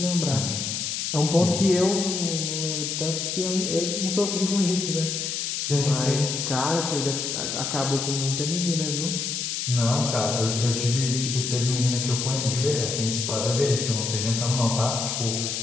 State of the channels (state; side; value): noise; left; hiss, 2 dB below the sound